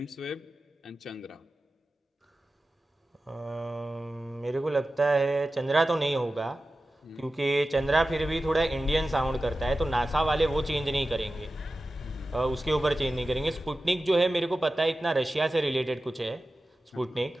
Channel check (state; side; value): normal; both; correlation 0.94